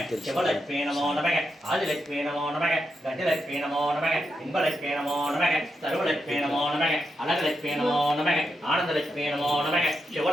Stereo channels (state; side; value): normal; both; correlation 0.85